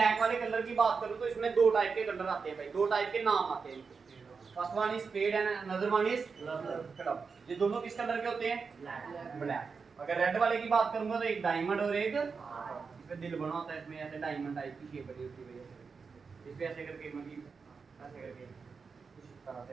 वाले कलर की बात करूं तो इसमें दो टाइप के कलर आते हैं भाई, दो टाइप के नाम आते हैं। First one is fed and another one is club. ये दोनों किस कलर के होते हैं? ब्लैक। अगर रेड वाले की बात करूंगा तो एक डायमंड और एक इसमें दिल बना होता है, इसमें ऐसे डायमंड टाइप की शेप बनी होती है वजह से, इस पे ऐसे करके मतलब ऐसे करके कुछ इस तरह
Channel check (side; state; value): left; quieter; 5.2 dB